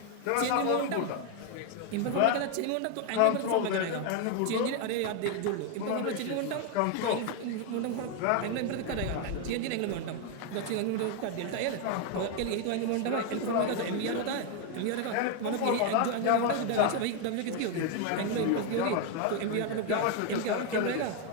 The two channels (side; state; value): both; different; correlation 0.01